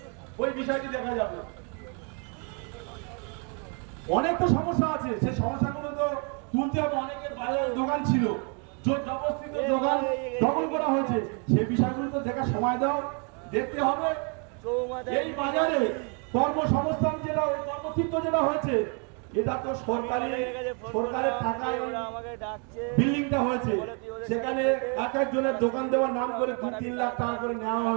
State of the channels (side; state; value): left; quieter; 37.4 dB